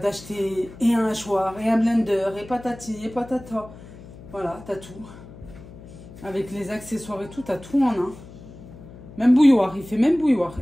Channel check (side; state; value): left; noise; hum, 17 dB below the sound